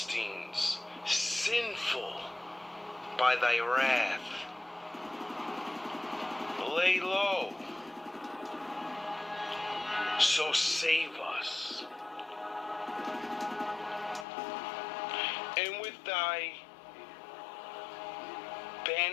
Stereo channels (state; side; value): drops out; right; at 14.2 s